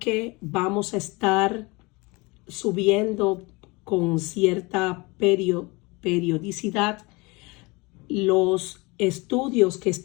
vamos a estar subiendo con cierta periodicidad los estudios que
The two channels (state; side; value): quieter; right; 25.4 dB